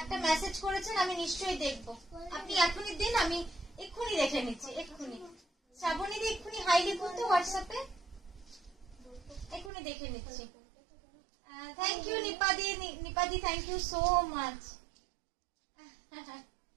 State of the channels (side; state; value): left; drops out; at 9.7 s